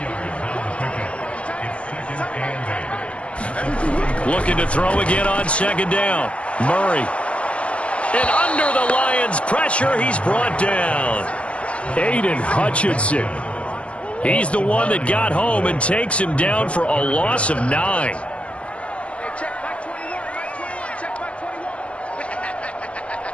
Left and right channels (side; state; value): right; late; 0.062 ms